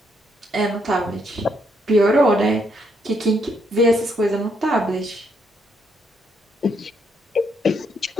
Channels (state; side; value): normal; both; correlation 0.74